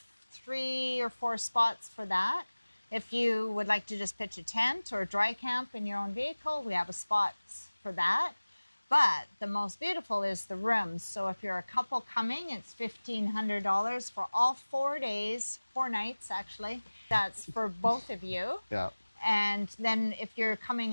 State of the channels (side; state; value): both; inverted; correlation -1.00